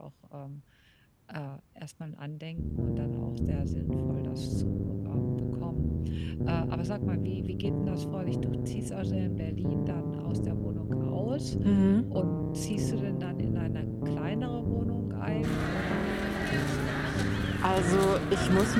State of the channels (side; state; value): both; identical; correlation 1.00